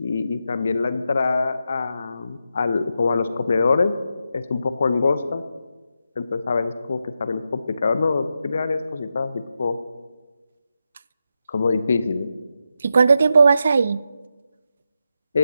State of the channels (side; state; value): both; inverted; correlation -0.87